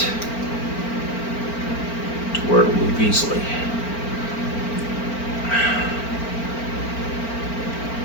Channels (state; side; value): late; right; 4.4 ms